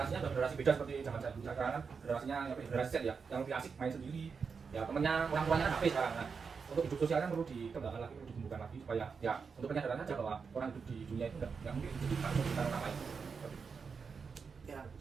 sudah generasi beda seperti zaman saya dulu. Sekarang kan generasinya generasi Z ya, yang lebih asik main sendiri. Ya temennya orang tuanya kan HP sekarang. Nah, untuk hidup sosial kan perlu dikembangkan lagi, perlu ditumbuhkan lagi supaya ya untuk penyadaran aja bahwa orang hidup di dunia itu nggak mungkin hidup tanpa orang lain. Ya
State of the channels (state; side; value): quieter; left; 5.5 dB